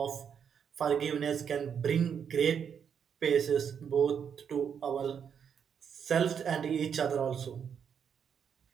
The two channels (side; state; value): left; quieter; 7.5 dB